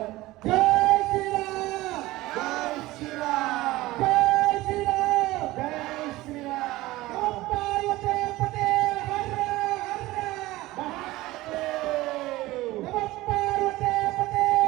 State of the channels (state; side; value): quieter; left; 18.4 dB